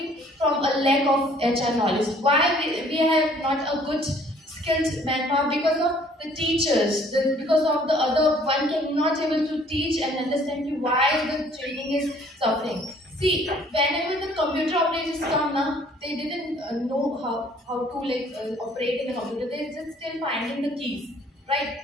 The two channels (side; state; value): both; normal; correlation 0.58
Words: from a lack of HR knowledge. Why we have not a good skilled manpower? Because of the teachers, because of the other one cannot able to teach and understand you why the training is suffering. See, whenever the computer operators come now, they didn't know how to operate in a computer. They just still finding the keys, right?